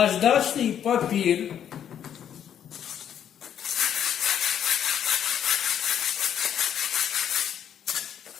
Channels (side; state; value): right; quieter; 9.4 dB